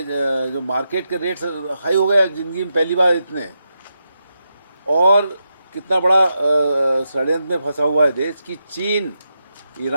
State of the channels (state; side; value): inverted; both; correlation -0.86